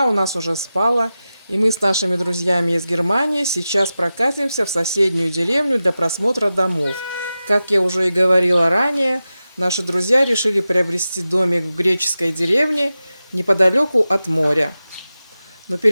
у нас уже спала, и мы с нашими друзьями из Германии сейчас прокатимся в соседнюю деревню для просмотра домов. Как я уже и говорила ранее, наши друзья решили приобрести домик в греческой деревне неподалеку от моря. Но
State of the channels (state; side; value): inverted; both; correlation -0.93